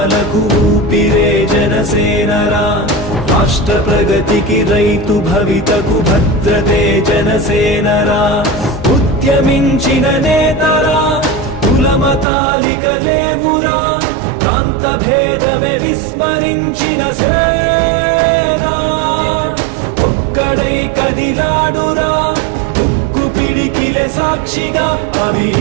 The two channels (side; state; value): left; drops out; at 12.2 s